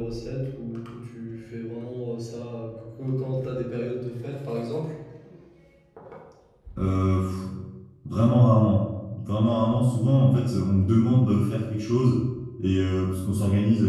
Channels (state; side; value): identical; both; correlation 1.00